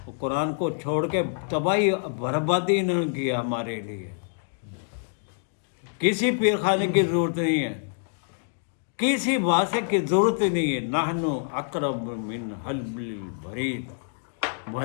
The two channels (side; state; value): right; silent; digital silence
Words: قرآن کو چھوڑ کے تباہی بربادی انہوں نے کیا ہمارے لیے. کسی پیر خانے کی ضرورت نہیں ہے، کسی واسطے کی ضرورت نہیں ہے. نحنو اقرب من حبل الورید